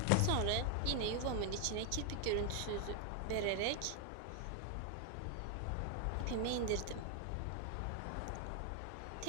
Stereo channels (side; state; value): both; different; correlation 0.00